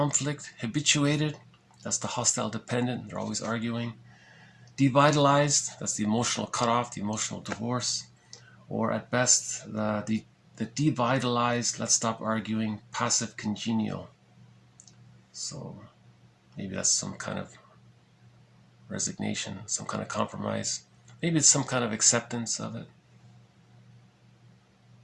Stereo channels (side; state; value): both; identical; correlation 1.00